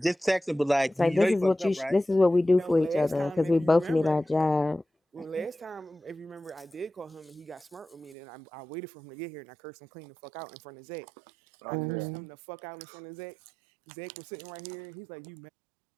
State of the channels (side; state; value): left; drops out; at 8.2 s